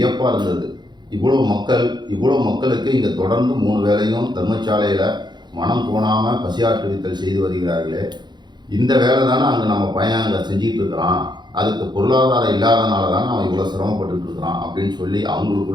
இருந்தது. இவ்வளோ மக்களுக்கு இங்கே தொடர்ந்து 3 வேளையும் தர்மசாலையில் மனம் கோணாமல் பசியாற்றுவித்தல் செய்து வருகிறார்களே, இந்த வேலை தானே அங்கே நம்ம பையன் அங்கே செஞ்சிகிட்டு இருக்கிறான், அதுக்கு பொருளாதாரம் இல்லாதனால தானே அவன் இவ்வளோ சிரமப்பட்டு இருக்கிறான் அப்படின்னு சொல்லி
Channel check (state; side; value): late; left; 0.21 ms